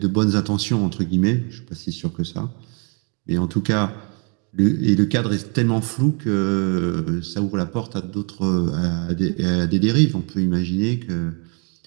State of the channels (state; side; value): quieter; left; 35.7 dB